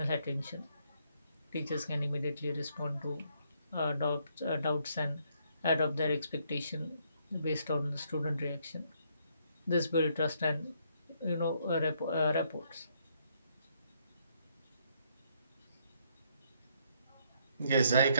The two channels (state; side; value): inverted; both; correlation -0.71